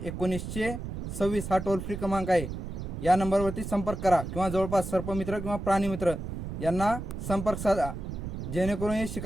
1926 हा टोल फ्री क्रमांक आहे. या नंबरवरती संपर्क करा किंवा जवळपास सर्पमित्र किंवा प्राणीमित्र यांना संपर्क साधा, जेणेकरून हे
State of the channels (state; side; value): noise; right; rumble, 6 dB below the sound